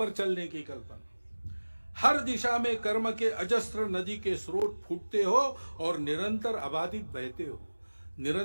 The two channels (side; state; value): both; inverted; correlation -1.00